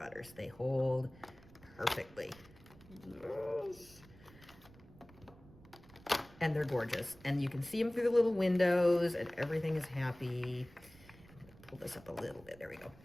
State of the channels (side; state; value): right; noise; rumble, 22 dB below the sound